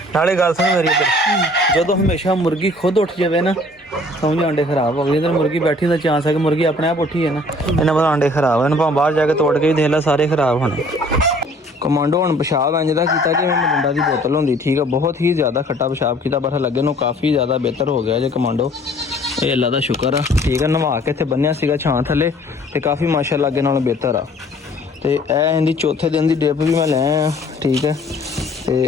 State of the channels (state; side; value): normal; both; correlation 0.55